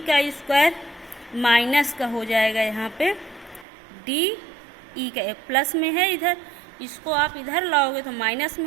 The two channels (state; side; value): drops out; left; at 3.7 s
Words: का स्क्वायर माइनस का हो जाएगा यहाँ पे DE का, प्लस में है इधर, इसको आप इधर लाओगे तो माइनस